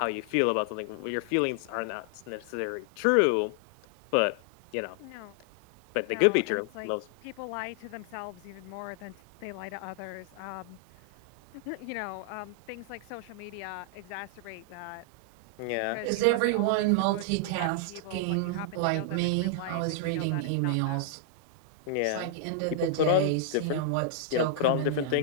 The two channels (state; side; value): different; both; correlation -0.01